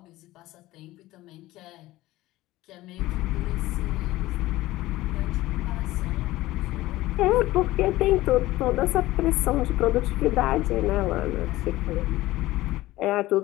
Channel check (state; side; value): quieter; right; 17.2 dB